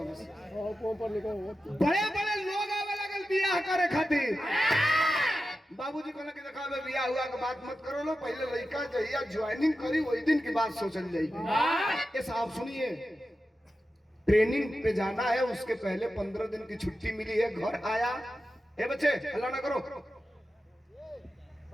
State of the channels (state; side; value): normal; both; correlation 0.92